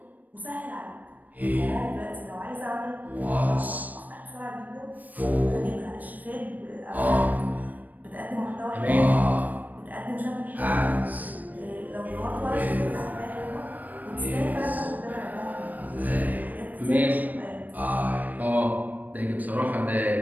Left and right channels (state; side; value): late; left; 0.082 ms